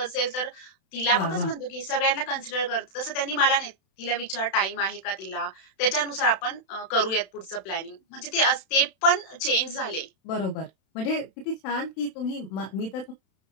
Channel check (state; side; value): late; right; 32 ms